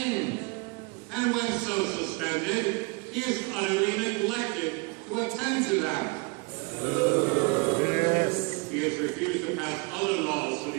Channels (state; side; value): quieter; left; 29.1 dB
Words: And when so suspended, he is utterly neglected to attend to them. Yes. He has refused to pass other laws for